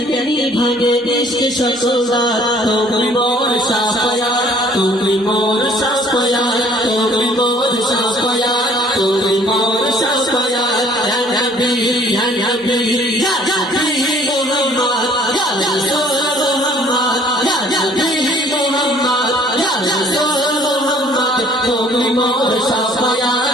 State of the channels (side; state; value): both; normal; correlation 0.56